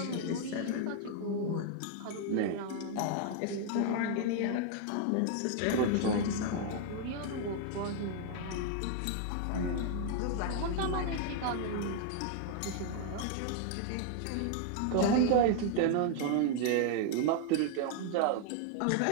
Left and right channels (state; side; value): different; both; correlation 0.00